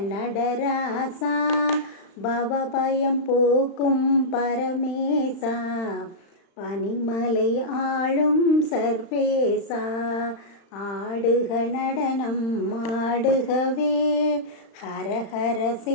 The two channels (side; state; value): right; late; 35 ms